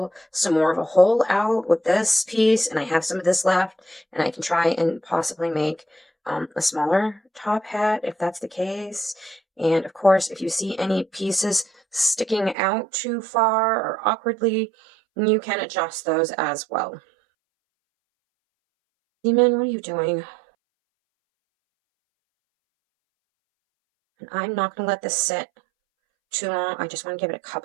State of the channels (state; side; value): drops out; left; at 12.6 s